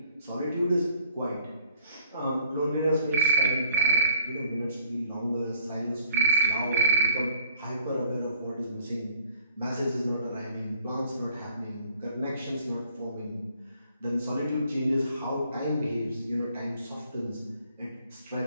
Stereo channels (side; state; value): both; inverted; correlation -0.53